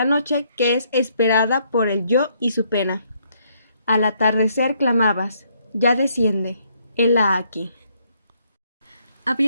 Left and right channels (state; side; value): inverted; both; correlation -0.71